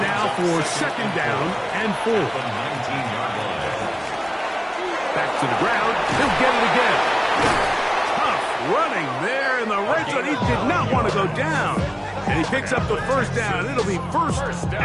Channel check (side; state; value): both; identical; correlation 1.00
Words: for second down and 4. Back to the ground. He'll get it again. Tough running there in the red zone. He did not want to go down. And he picks up the first down. It'll be 1st